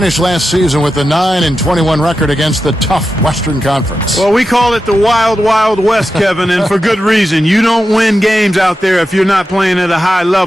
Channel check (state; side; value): normal; both; correlation 0.90